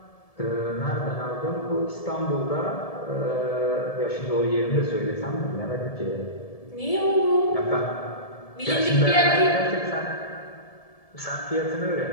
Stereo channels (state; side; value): late; right; 1.7 ms